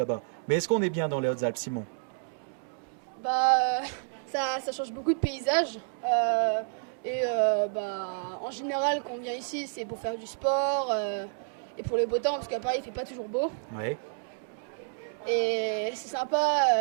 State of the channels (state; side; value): silent; left; digital silence